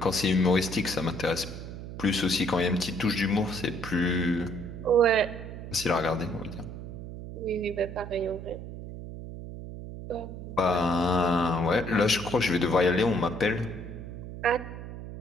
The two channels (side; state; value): right; noise; hum, 10 dB below the sound